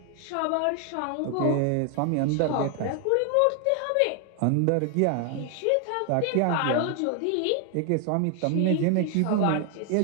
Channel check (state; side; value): different; both; correlation 0.00